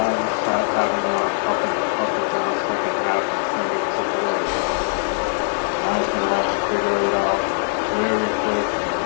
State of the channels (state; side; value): silent; right; digital silence